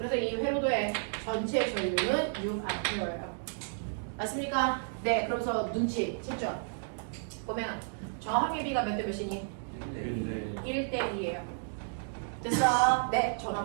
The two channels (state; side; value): silent; left; digital silence